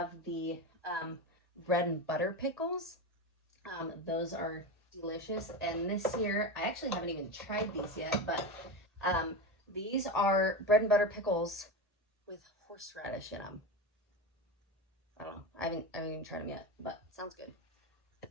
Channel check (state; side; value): normal; both; correlation 0.20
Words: the bread and butter pickles. Those are delicious. And this year, I actually haven't even tried these yet, but these are bread and butter pickles with horseradish in them. I don't know. I haven't even tried them yet, but sounds good.